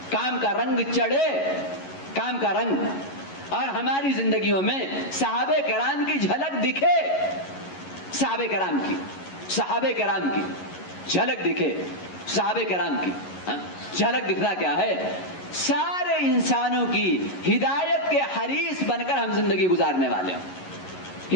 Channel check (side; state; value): right; late; 11 ms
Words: کام کا رنگ چڑھے، کام کا رنگ، اور ہماری زندگیوں میں صحابہ کرام کی جھلک دکھے، صحابہ کرام کی جھلک دکھے، صحابہ کرام کی جھلک دکھنا کیا ہے؟ سارے انسانوں کی ہدایت کے حریص بن کر ہم زندگی گزارنے والے ہوں.